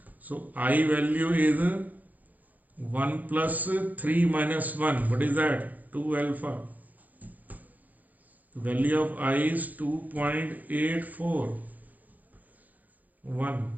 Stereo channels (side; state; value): left; late; 0.081 ms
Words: So I value is 1 plus 3 minus 1. What is that? 2 alpha. The value of I is 2.84. 1